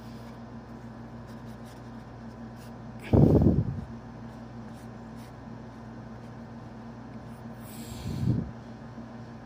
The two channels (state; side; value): identical; both; correlation 1.00